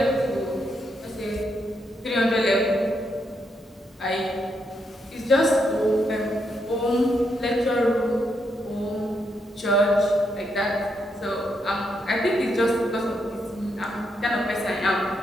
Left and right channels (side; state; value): both; normal; correlation 0.79